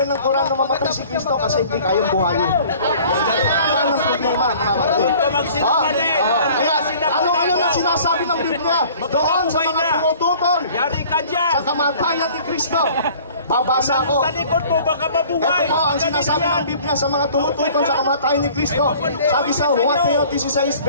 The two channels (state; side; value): inverted; both; correlation -0.49